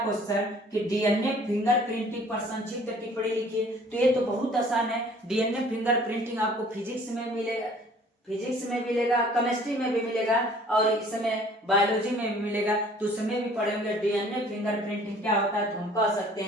कि डीएनए फिंगरप्रिंटिंग पर संक्षिप्त टिप्पणी लिखिए, तो ये तो बहुत आसान है। डीएनए फिंगरप्रिंटिंग आपको फिजिक्स में मिलेगा, केमिस्ट्री में भी मिलेगा और इसमें बायोलॉजी में भी मिलेगा। तो उसमें भी पढ़ेंगे डीएनए फिंगरप्रिंटिंग क्या होता है। तो हम कह सकते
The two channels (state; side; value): normal; both; correlation 0.53